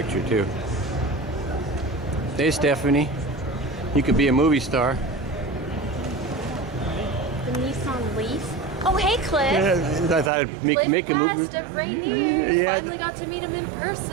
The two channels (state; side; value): drops out; left; at 10.3 s